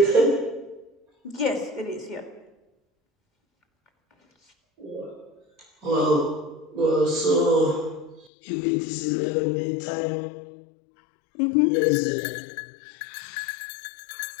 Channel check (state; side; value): drops out; right; at 8.3 s